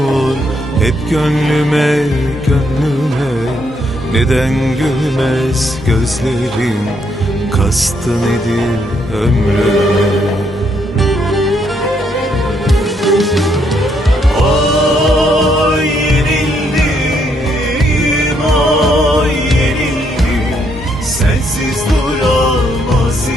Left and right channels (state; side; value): normal; both; correlation 0.74